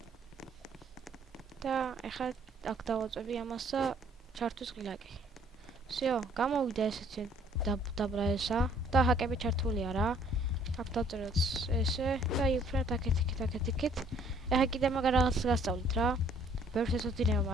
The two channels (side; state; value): both; normal; correlation 0.60